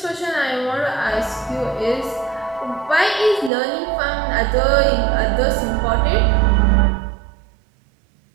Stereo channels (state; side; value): drops out; left; at 3.5 s